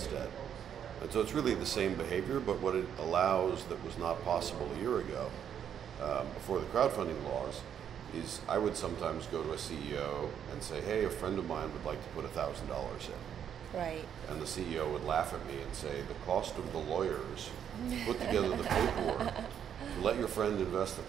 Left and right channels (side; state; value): left; quieter; 8.8 dB